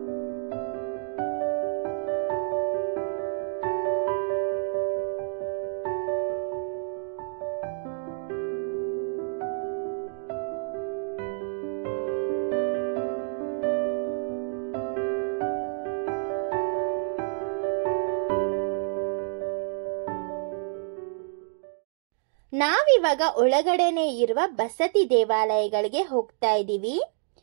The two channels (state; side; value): silent; left; digital silence